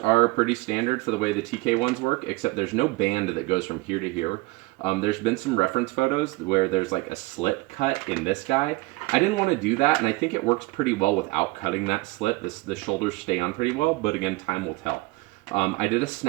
pretty standard for the way the TK ones work, except there's no band that goes from here to here. There's been some reference photos where there's like a slit cut in this guy. I didn't want to do that, and I think it works pretty well without cutting that slit. The shoulders stay on pretty well, but again, time will tell. I did a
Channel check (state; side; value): quieter; left; 22.1 dB